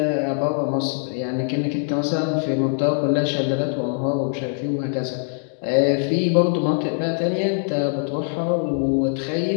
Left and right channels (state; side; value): silent; right; 64 dB below the other